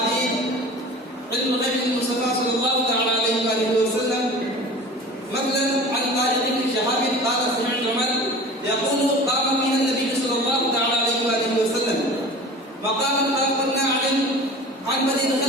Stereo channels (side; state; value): both; normal; correlation 0.39